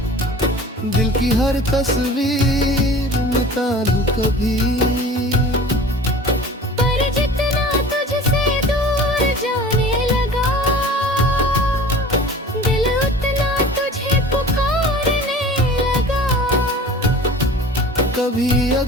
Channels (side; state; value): both; normal; correlation 0.42